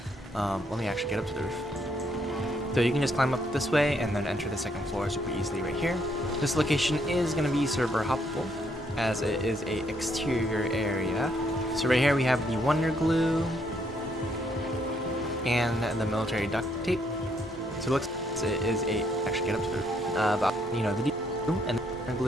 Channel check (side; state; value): both; normal; correlation 0.71